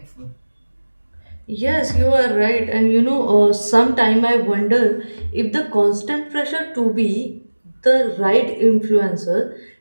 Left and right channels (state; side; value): inverted; both; correlation -1.00